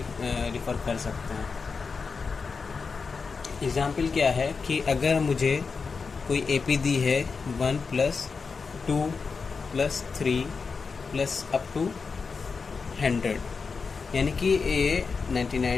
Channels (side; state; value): right; quieter; 5.0 dB